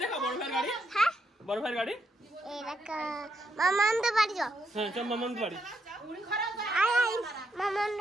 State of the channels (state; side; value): normal; both; correlation 0.79